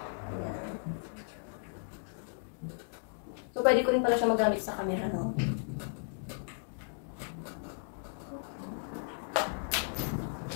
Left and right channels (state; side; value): silent; right; digital silence